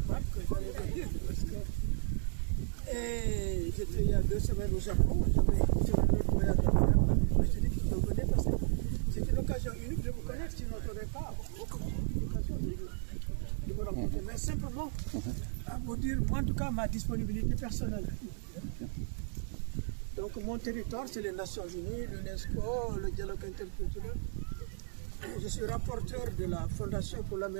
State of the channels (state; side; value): silent; left; 55 dB below the other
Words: Pape que j'allais venir parce que j'étais il y a 2 semaines au Japon, j'avais sur un autre voyage à faire, mais je dis que je venais parce que c'était l'occasion unique de vous connaître, sinon je n'aurais pas l'occasion de vous rencontrer. Mais simplement à vous dire, moi en tout cas, ma disponibilité personnelle. Donc mon territoire, c'est les Nations Unies, l'UNESCO, le dialogue interculturel. Je suis rapporteur de la Fondation pour la